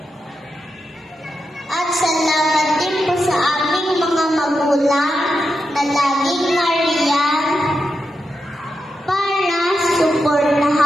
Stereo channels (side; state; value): both; normal; correlation 0.87